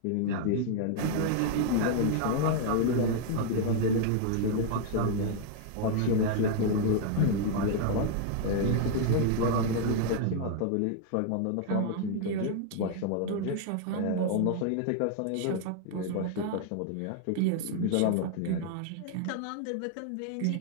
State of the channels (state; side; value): different; both; correlation 0.00